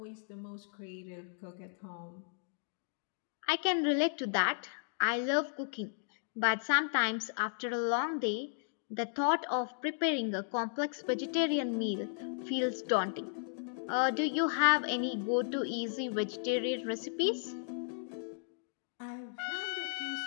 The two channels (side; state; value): right; silent; digital silence